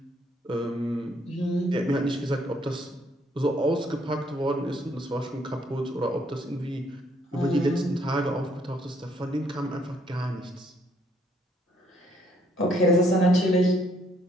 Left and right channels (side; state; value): both; normal; correlation 0.68